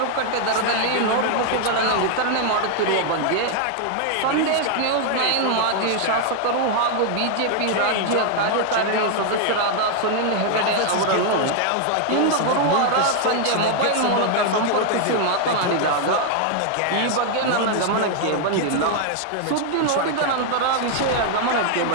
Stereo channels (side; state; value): both; different; correlation 0.00